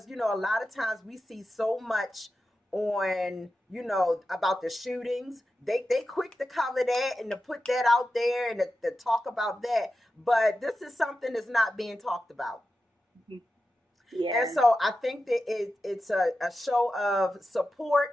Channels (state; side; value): normal; both; correlation 0.91